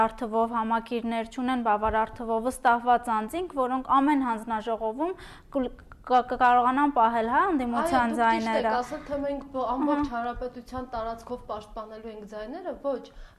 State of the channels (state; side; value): identical; both; correlation 1.00